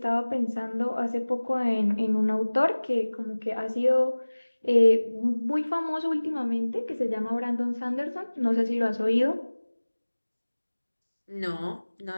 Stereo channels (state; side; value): inverted; both; correlation -1.00